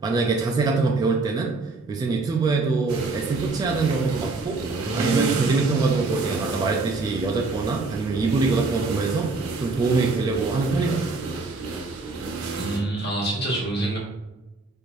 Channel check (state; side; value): quieter; left; 3.6 dB